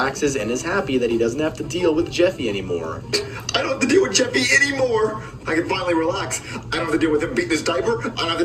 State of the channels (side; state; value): both; identical; correlation 1.00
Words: and is happy that he doesn't have to deal with Jeffy anymore. I don't have to deal with Jeffy anymore. I can finally relax. I don't have to deal with him beating his diaper. I don't have